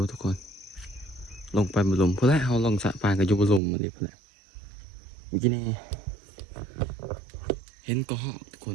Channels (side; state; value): left; drops out; at 3.6 s